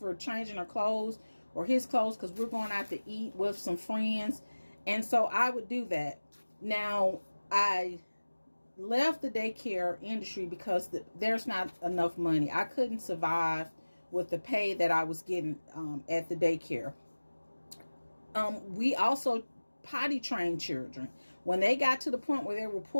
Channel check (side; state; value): both; inverted; correlation -1.00